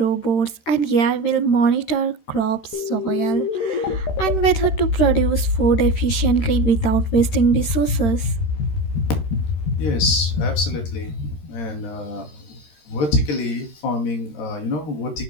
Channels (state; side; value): late; right; 13 ms